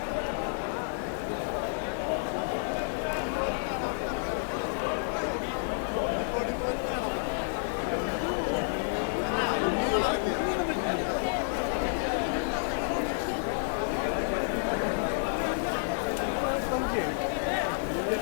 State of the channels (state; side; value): silent; right; digital silence